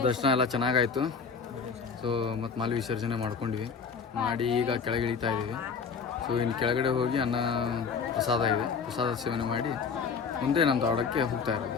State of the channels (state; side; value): quieter; right; 5.7 dB